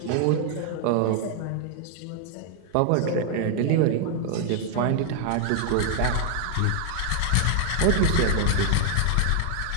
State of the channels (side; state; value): both; different; correlation 0.00